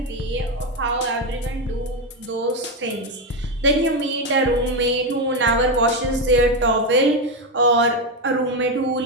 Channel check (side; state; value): both; normal; correlation 0.09